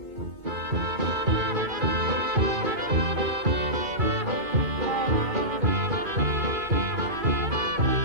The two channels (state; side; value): late; left; 2.2 ms